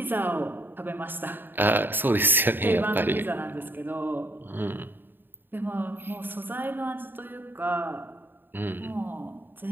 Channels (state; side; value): late; left; 0.095 ms